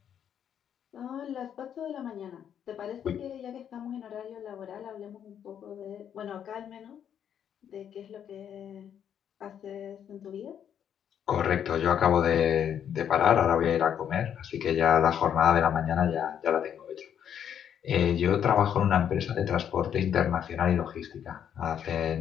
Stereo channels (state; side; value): quieter; right; 9.0 dB